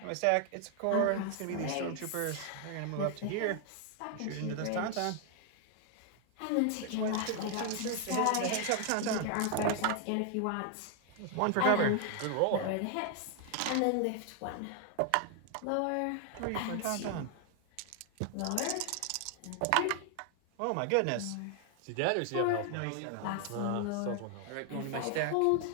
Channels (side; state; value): both; different; correlation 0.00